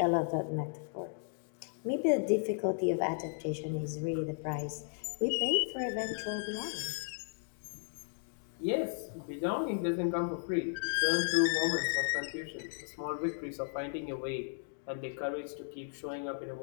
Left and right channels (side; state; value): right; silent; digital silence